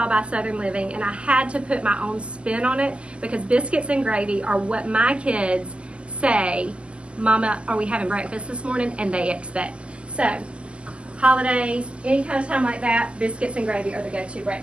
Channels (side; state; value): left; late; 0.053 ms